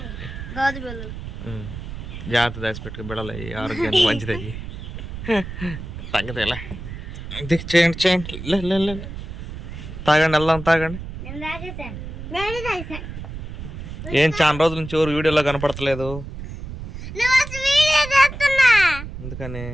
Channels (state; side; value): noise; right; rumble, 9 dB below the sound